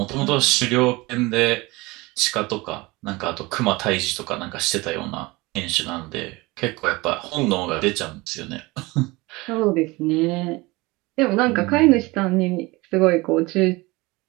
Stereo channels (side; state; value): left; quieter; 22.8 dB